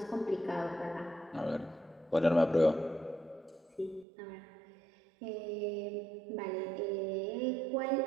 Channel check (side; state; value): left; drops out; at 4.0 s